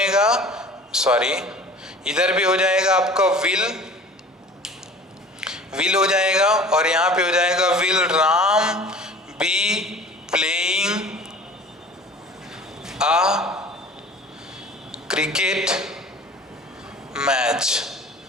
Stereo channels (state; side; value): normal; both; correlation 0.43